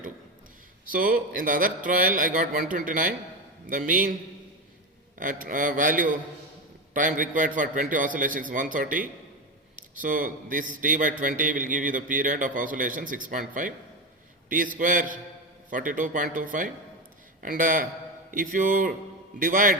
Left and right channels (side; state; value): both; normal; correlation 0.17